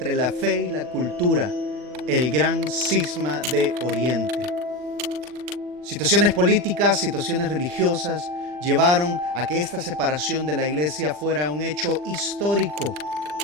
la fe y la cultura, el gran cisma de Oriente. Situaciones políticas, situaciones religiosas llevaron a que esta separación de la iglesia fuera un hecho histórico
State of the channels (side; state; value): left; late; 40 ms